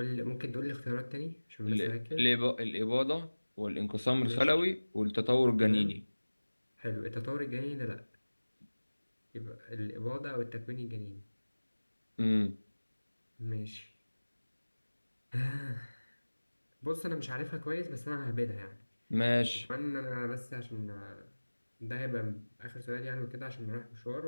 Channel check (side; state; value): both; inverted; correlation -1.00